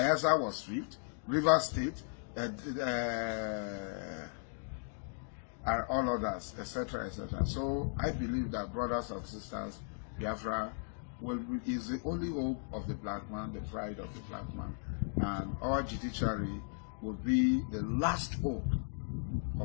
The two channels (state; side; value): silent; right; digital silence